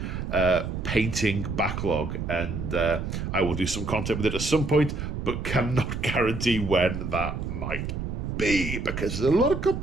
painting backlog, and I will do some content with it at some point, but cannot guarantee when that might be because there's a lot of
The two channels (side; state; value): right; noise; rumble, 4 dB below the sound